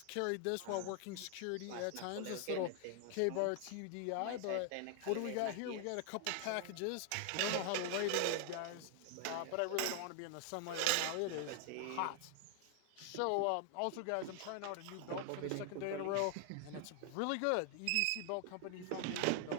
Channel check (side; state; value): both; different; correlation 0.00